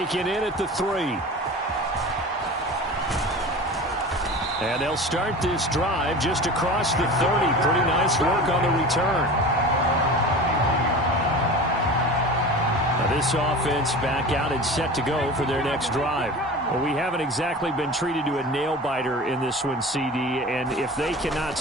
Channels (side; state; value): both; normal; correlation 0.35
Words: in at the 3. And they'll start this drive just across the 30. Pretty nice work on the return. Now this offense back out and set to go for their next drive. Well, we haven't exactly been treated to a nail-biter in this one, CD. And if they cannot